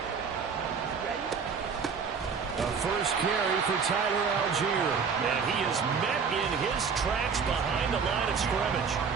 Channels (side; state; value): left; quieter; 5.9 dB